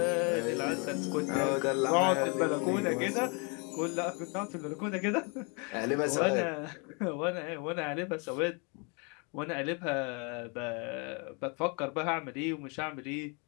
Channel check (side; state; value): right; quieter; 33.8 dB